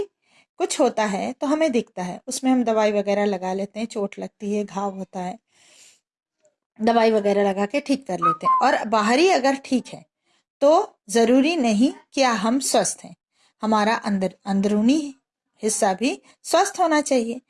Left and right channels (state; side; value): identical; both; correlation 1.00